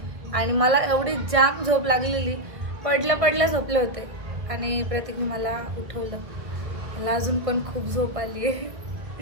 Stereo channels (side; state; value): left; late; 1.9 ms